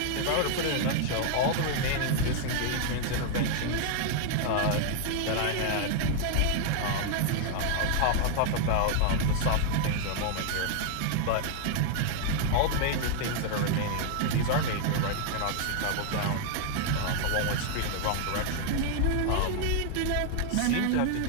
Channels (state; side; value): different; both; correlation 0.00